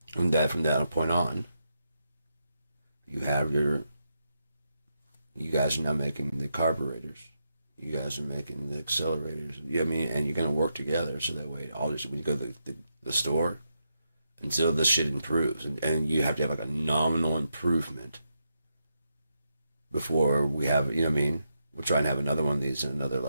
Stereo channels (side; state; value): both; inverted; correlation -0.83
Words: And that from that point on, you guys are now making the carburetors. You guys are making the accelerators. You know what I mean? And you're going to work together so that way when you go to the store, until this shit improves. And you have to have like a nominal improvement before we have, you know what I mean? We'll try and have another one of these in another